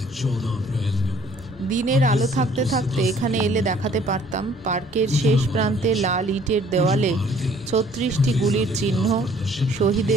দিনের আলো থাকতে থাকতে এখানে এলে দেখাতে পারতাম পার্কের শেষ প্রান্তে লাল ইটের দেওয়ালে 36টি গুলির চিহ্ন,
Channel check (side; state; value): both; normal; correlation 0.57